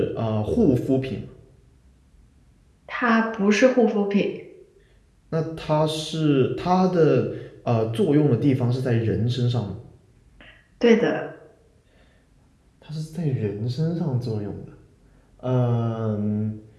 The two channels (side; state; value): both; identical; correlation 1.00